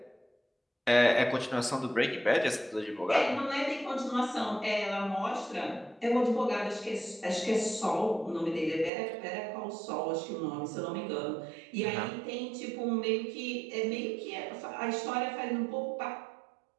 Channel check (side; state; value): left; drops out; at 8.9 s